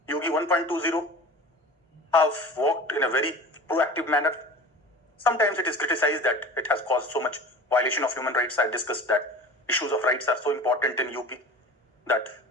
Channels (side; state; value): both; normal; correlation 0.38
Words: Yogi 1.20 have worked in a very proactive manner. Sometimes it is criticized that it has caused so much violation of human rights. I discussed that issues of rights are so important in UP that